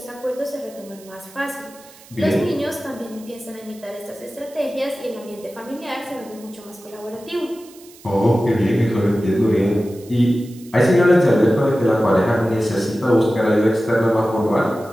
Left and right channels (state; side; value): noise; right; hiss, 23 dB below the sound